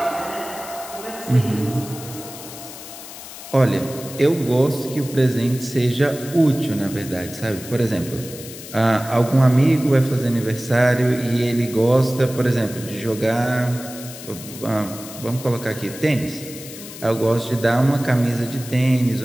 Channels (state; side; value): noise; left; hiss, 14 dB below the sound